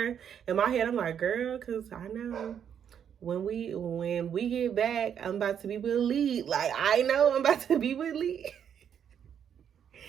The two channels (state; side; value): quieter; left; 8.5 dB